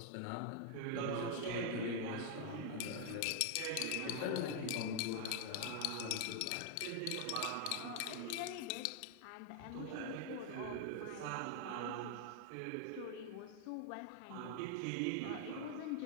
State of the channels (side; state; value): both; different; correlation 0.00